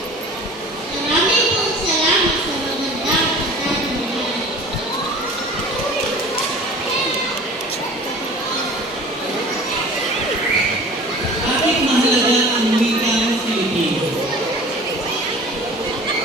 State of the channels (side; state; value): both; normal; correlation 0.42